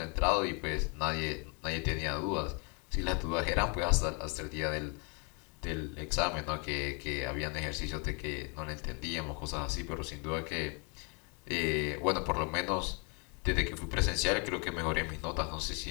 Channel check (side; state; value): right; quieter; 34.2 dB